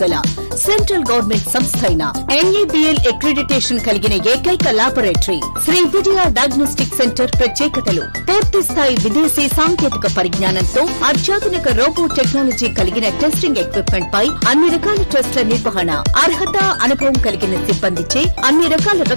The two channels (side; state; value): both; inverted; correlation -1.00